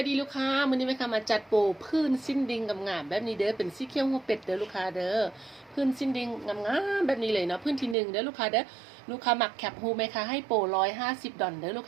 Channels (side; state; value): left; drops out; at 8.0 s